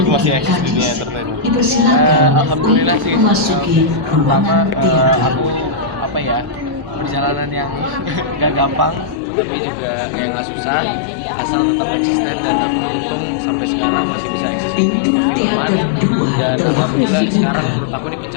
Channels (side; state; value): right; drops out; at 9.2 s